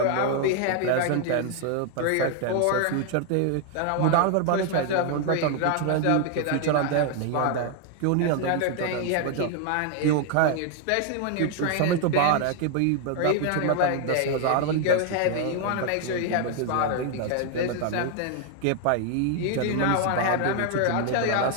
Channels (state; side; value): different; both; correlation 0.00